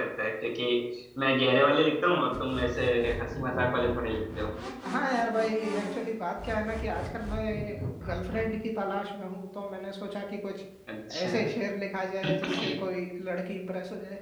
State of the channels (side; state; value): both; identical; correlation 1.00